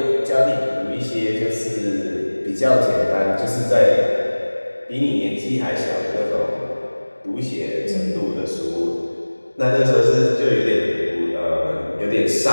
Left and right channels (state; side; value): inverted; both; correlation -1.00